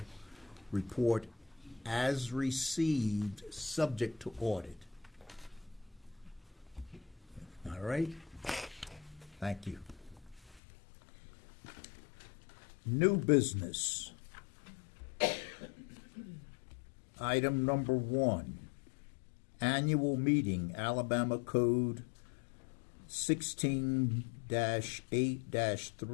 report as received, subject to audit. All right? Thank you. New business. Item number 1, annual meeting, Alabama Code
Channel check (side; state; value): right; drops out; at 10.6 s